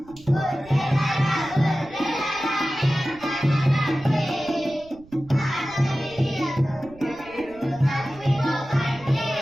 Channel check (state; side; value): noise; right; rumble, 23 dB below the sound